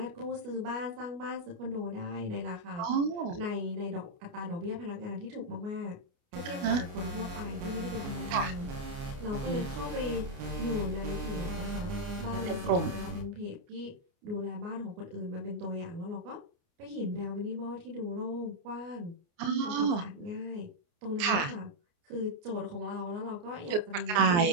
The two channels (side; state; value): left; late; 29 ms